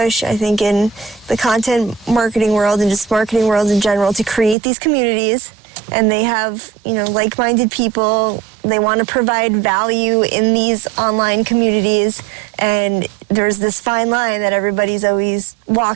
I think, in the content marketing world and just marketing world in general to create these communities. And they have, like-minded people. They want to provide value in these online communities. And there's this fine line that everybody's always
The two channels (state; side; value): drops out; left; at 4.5 s